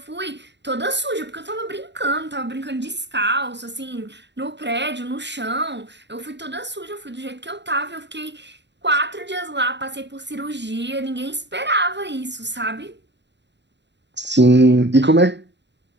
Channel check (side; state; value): left; late; 0.51 ms